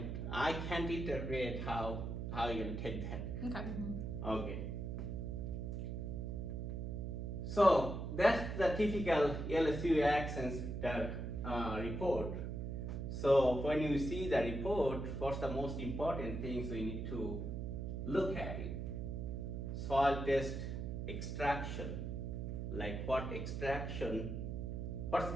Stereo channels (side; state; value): right; noise; hum, 4 dB below the sound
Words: I can't interpret how you're gonna take that. Okay. Okay. So that's the typical LSU AgCenter report. So when you see the report, what's the most important things we need to look at it? Soil test extraction, like what